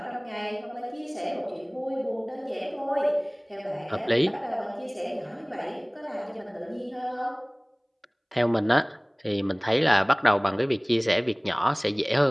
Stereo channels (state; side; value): identical; both; correlation 1.00